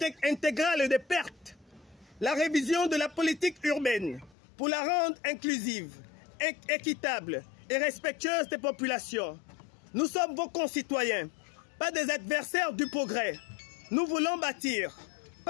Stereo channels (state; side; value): drops out; right; at 4.4 s